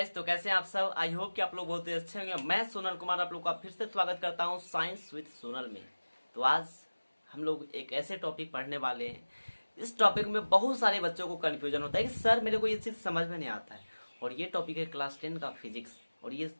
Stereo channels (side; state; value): both; inverted; correlation -1.00